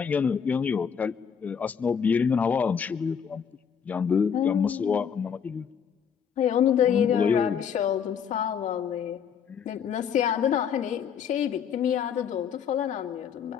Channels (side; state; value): right; quieter; 7.4 dB